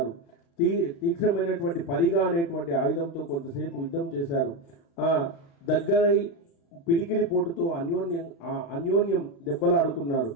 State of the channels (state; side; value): late; right; 36 ms